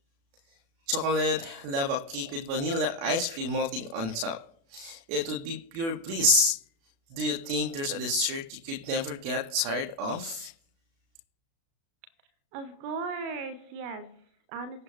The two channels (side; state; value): left; late; 36 ms